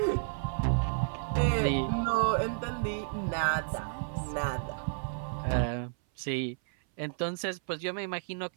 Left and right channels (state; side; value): silent; left; 57 dB below the other